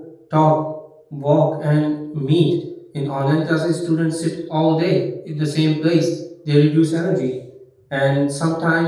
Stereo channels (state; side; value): identical; both; correlation 1.00